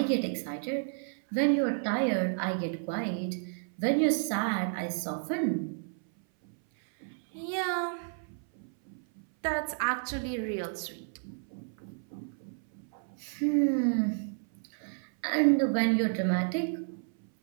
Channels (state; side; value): silent; left; 57 dB below the other